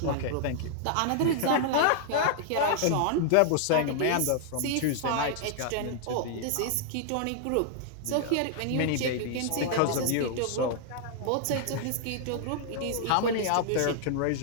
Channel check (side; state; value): both; different; correlation 0.00